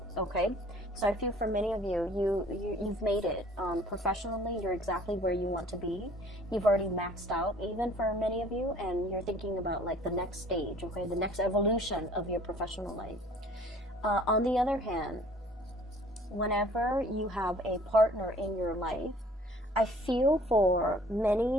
Okay, so I feel for many of you've made it professionally. You're exactly where you want to be. You've already maxed out, even for many of you, and you're thinking about like the next stage, okay, the next evolution of your professional life. On the other hand, whenever you have a partner in your life, I feel for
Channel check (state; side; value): normal; both; correlation 0.53